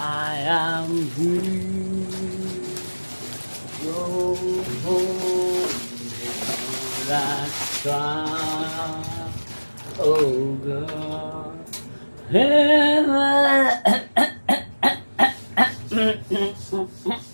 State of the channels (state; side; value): inverted; both; correlation -1.00